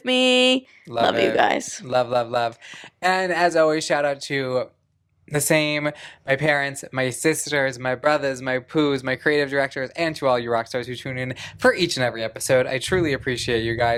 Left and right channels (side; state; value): both; identical; correlation 1.00